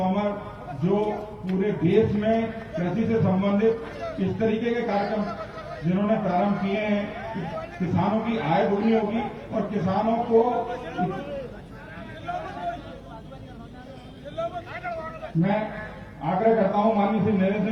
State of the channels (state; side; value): identical; both; correlation 1.00